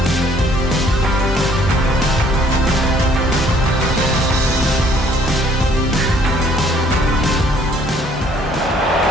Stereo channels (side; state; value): both; normal; correlation 0.60